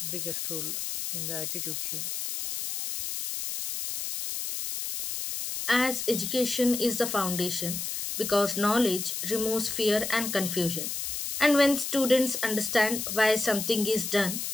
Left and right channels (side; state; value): left; noise; hiss, 4 dB below the sound